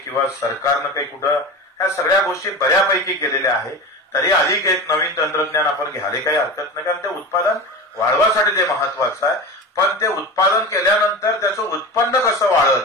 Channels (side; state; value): both; normal; correlation 0.28